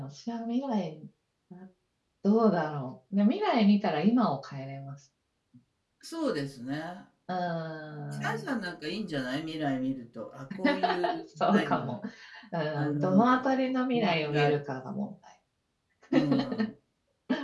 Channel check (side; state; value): both; identical; correlation 1.00